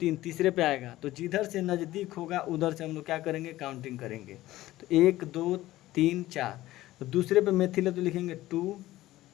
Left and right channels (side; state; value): right; quieter; 16.1 dB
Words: तीसरे पे आएगा। तो जिधर से नज़दीक होगा उधर से हम लोग क्या करेंगे, काउंटिंग करेंगे। तो 1 2 3 4, तो दूसरे पे मेथिल है तो लिखेंगे 2